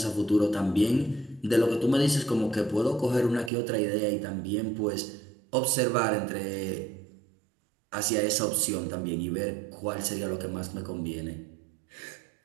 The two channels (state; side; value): drops out; left; at 3.5 s